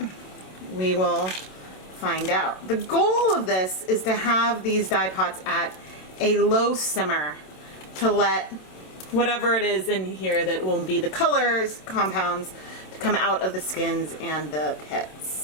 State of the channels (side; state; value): right; late; 27 ms